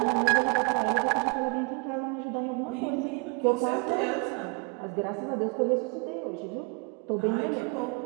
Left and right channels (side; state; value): left; quieter; 32.3 dB